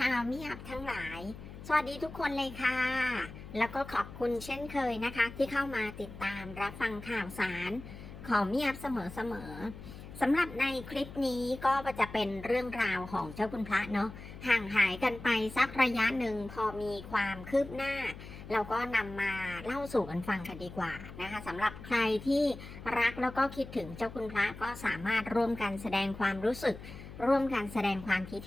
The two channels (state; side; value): noise; left; hum, 14 dB below the sound